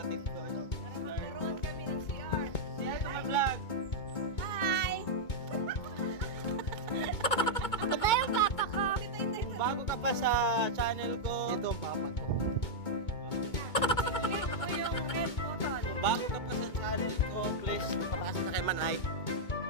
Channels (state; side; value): late; right; 2.2 ms